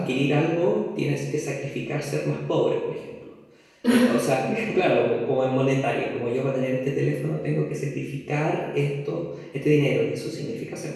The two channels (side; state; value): both; identical; correlation 1.00